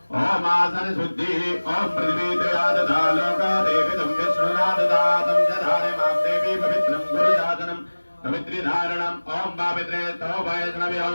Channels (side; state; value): both; inverted; correlation -1.00